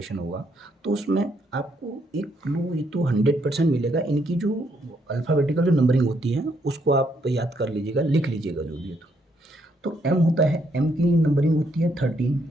होगा तो उसमें आपको एक क्लू ये तो 100% मिलेगा। इनकी जो अल्फ़ाबेटिकल जो नंबरिंग होती है उसको आप याद कर लीजिएगा, लिख लीजिएगा जो भी है। तो एम होता है, एम की नंबरिंग होती है 13,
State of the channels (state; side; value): normal; both; correlation 0.73